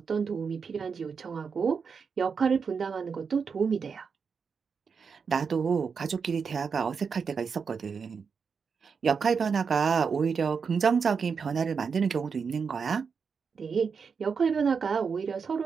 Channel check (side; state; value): left; quieter; 5.8 dB